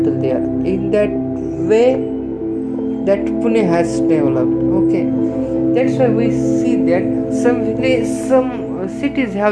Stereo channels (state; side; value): identical; both; correlation 1.00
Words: there. In that way, that Pune has developed. Okay, that's why we see that some cities